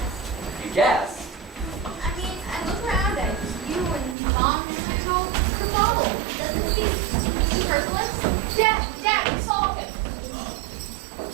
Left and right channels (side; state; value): left; drops out; at 4.2 s